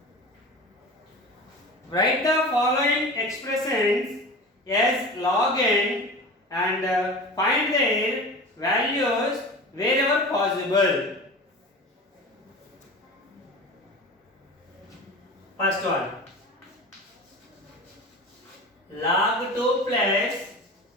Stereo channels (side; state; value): both; normal; correlation 0.34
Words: Write the following expressions as log n and find their values wherever possible. First one, log 2 plus